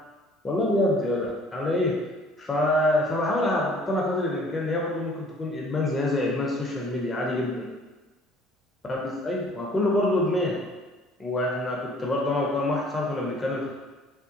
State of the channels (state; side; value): normal; both; correlation 0.54